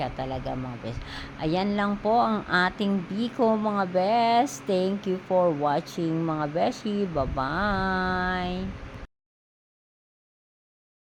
talaga mga best. Ayan lang po ang ating biko mga best. Thank you for watching mga beshi. Bye-bye.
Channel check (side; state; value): both; identical; correlation 1.00